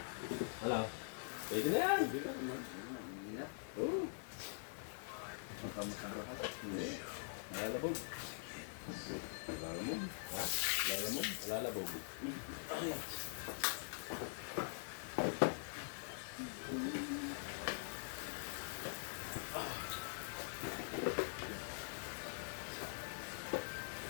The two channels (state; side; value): silent; right; digital silence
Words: Ano? Pwede na yan. Hindi na naman. Hindi na. Oo. Makamusang rahat. Lalabog. Lalamog. Ha? Lalamog? Lalabog.